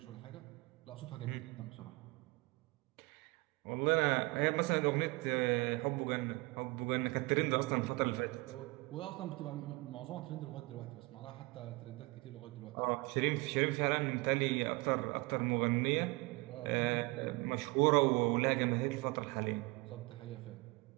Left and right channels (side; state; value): left; quieter; 25.0 dB